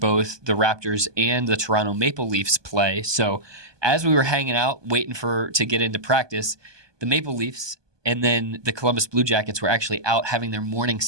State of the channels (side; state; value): left; late; 1.2 ms